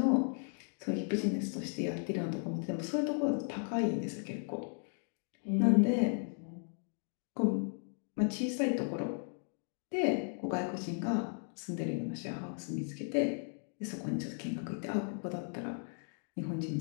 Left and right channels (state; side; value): silent; right; 54 dB below the other